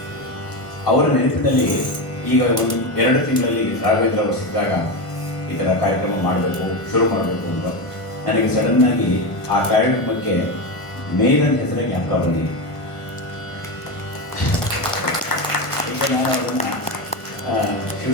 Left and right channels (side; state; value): right; late; 1.5 ms